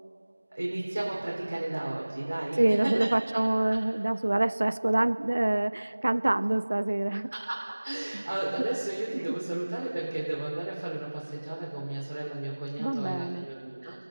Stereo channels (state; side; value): inverted; both; correlation -1.00